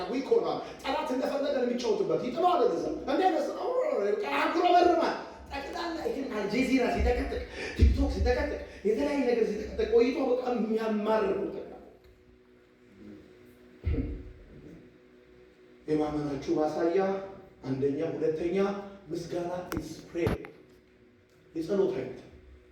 ዊክ ሆኗል። ጠላት እንደፈለገ የሚጫወትበት ይጥለዋል። ለዛ እንደነስ አጉረመርማል። ጠቅላላ ይህን አልጀዚራ ሲጠቀጥቅ፣ ቲክቶክ ሲጠቀጥቅ፣ የተለያየ ነገር ሲጠቀጥቅ ቆይቶ በጣም የሚያማርር ነው። የማመናችሁ ማሳያ አንደኛ፣ ሁለተኛ ምስጋና ኢዝ ፕሬየር። የጸሎት አይነት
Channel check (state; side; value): identical; both; correlation 1.00